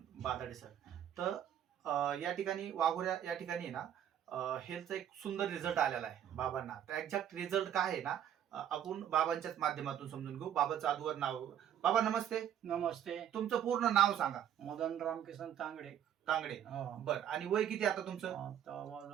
बादाडे सर. तर या ठिकाणी वाघोऱ्या या ठिकाणी आहे ना हेल्थचा एक सुंदर रिझल्ट आलेला आहे बाबांना. तर एक्झॅक्ट रिझल्ट काय आहे ना आपण बाबांच्याच माध्यमातून समजून घेऊ. बाबाचं अगोदर नाव. बाबा नमस्ते. नमस्ते. तुमचं पूर्ण नाव सांगा. मदन रामकिसन तांगडे. तांगडे. हो. बर, आणि वय किती आता तुमचं?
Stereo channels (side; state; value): left; quieter; 10.0 dB